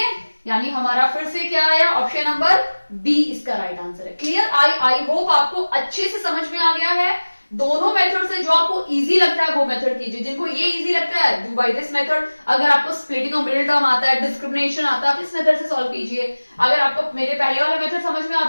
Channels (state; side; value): inverted; both; correlation -1.00